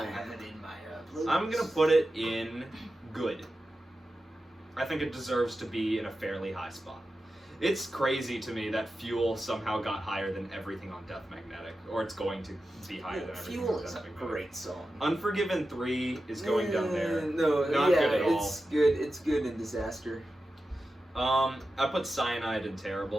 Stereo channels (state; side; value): normal; both; correlation 0.92